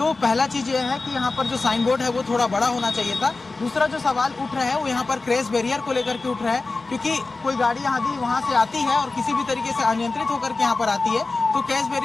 पहला चीज ये है कि यहाँ पर जो साइन बोर्ड है वो थोड़ा बड़ा होना चाहिए था। दूसरा जो सवाल उठ रहा है वो यहाँ पर क्रैश बैरियर को लेकर के उठ रहा है, क्योंकि कोई गाड़ी यदि वहाँ से आती है और किसी भी तरीके से अनियंत्रित होकर के यहाँ पर आती है तो क्रैश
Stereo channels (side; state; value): right; quieter; 3.6 dB